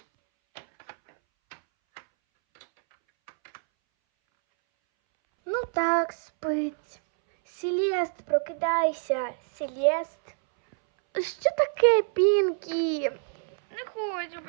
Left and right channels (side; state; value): left; silent; 60 dB below the other